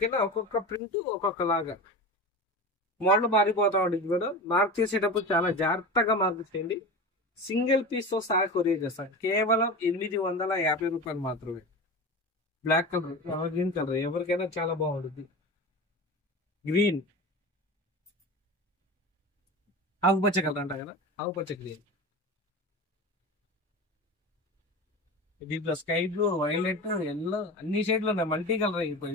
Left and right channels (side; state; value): both; normal; correlation 0.29